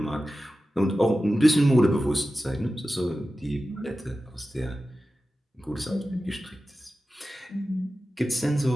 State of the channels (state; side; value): normal; both; correlation 0.94